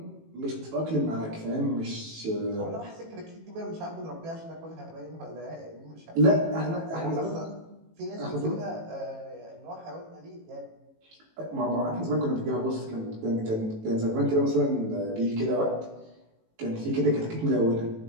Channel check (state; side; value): late; left; 18 ms